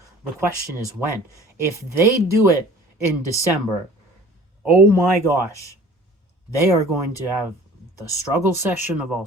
The question is when. If they do it in December, oh my gosh, they are going to have the struggle session of all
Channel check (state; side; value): normal; both; correlation 0.47